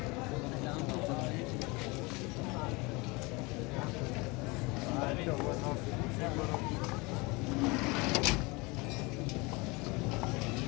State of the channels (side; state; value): right; quieter; 25.9 dB